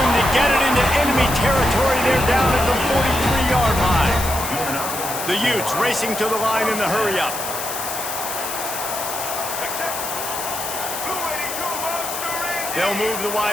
to get it into enemy territory. They're down at the 43-yard line. The Utes racing to the line in the hurry-up. They'll move the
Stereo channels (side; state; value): left; noise; hiss, 6 dB below the sound